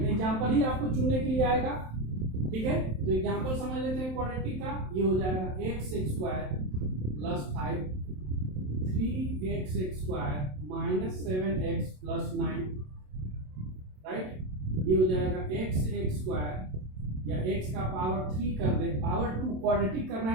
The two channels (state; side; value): late; left; 27 ms